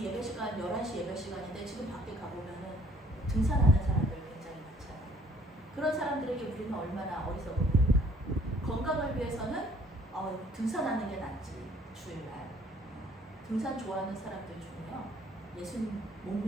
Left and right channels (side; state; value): both; normal; correlation 0.59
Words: 예배 시간 11시 예배 시간인데 지금 밖에 가보면은 등산하는 사람들 굉장히 많잖아요. 그런 사람들에게 우리는 얼마나 어리석어 보일까. 건강을 위해서는 등산하는 게 낫지. 주일날 등산 좋아하는 사람들 중에요 예수님 못